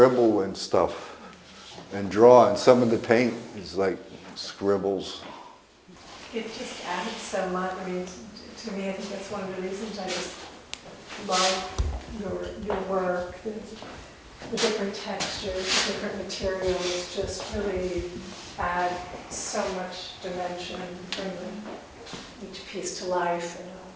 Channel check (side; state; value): both; identical; correlation 1.00